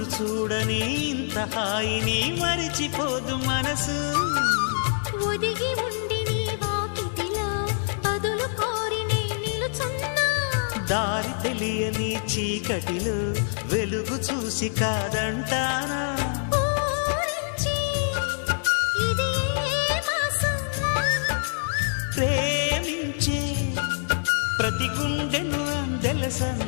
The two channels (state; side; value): silent; right; 56 dB below the other